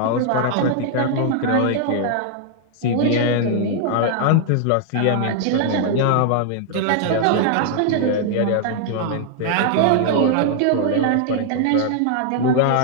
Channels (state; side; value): different; both; correlation 0.00